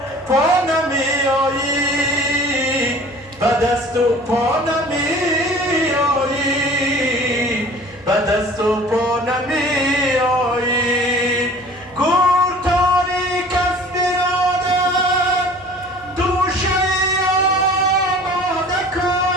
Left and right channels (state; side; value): normal; both; correlation 0.46